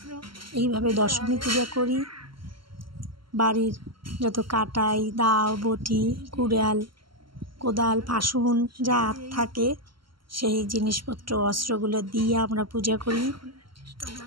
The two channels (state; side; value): late; left; 0.74 ms